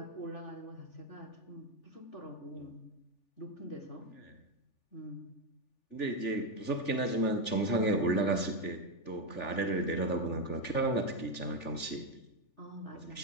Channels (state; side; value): late; right; 3.4 ms